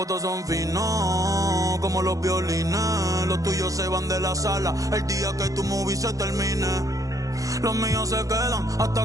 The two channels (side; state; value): left; late; 0.17 ms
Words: todos son finos, como los violines. Los tuyos se van de la sala el día que tu movie se termine. Los míos se quedan